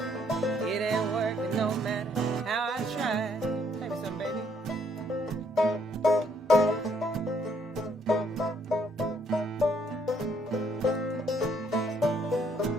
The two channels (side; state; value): both; normal; correlation 0.68